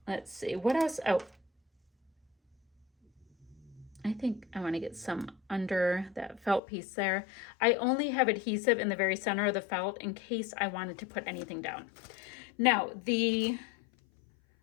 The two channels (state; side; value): drops out; right; at 6.6 s